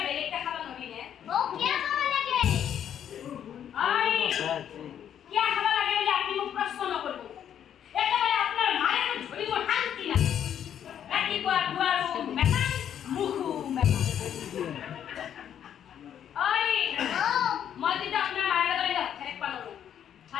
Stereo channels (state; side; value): quieter; right; 9.5 dB